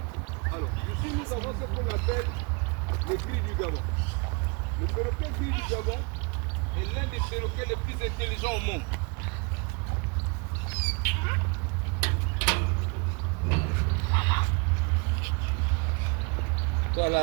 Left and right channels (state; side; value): quieter; left; 31.4 dB